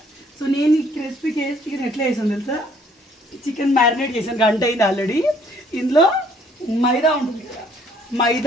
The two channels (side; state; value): both; normal; correlation 0.62